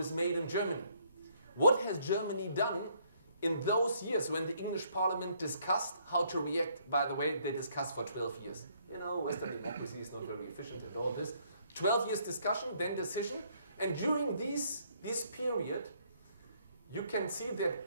made in Germany. What has Germany done in those years when the English Parliament discussed how to react? By the way, they discussed for 12 years. You know, Western democracy is not very efficient at all this. 12 years discussion, then decision. And during this period, you can see that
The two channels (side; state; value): both; inverted; correlation -0.67